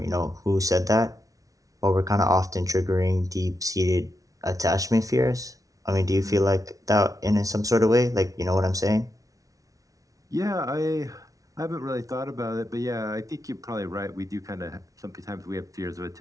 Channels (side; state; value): left; late; 0.17 ms